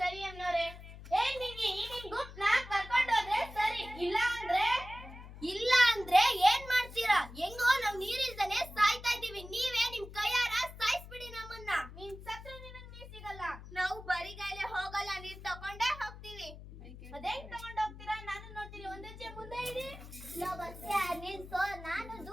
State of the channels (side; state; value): left; noise; hum, 15 dB below the sound